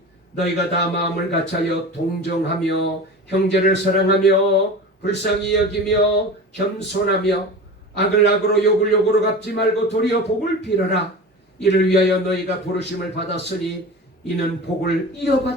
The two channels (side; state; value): both; normal; correlation 0.32